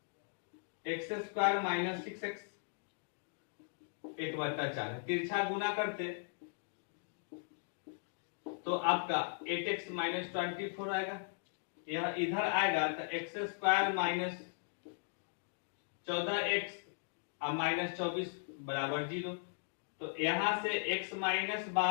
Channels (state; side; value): silent; right; digital silence